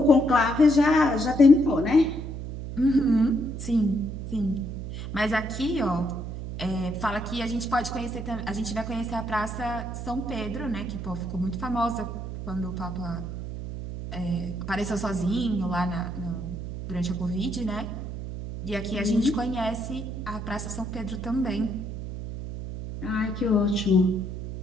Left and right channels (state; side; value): noise; right; hum, 7 dB below the sound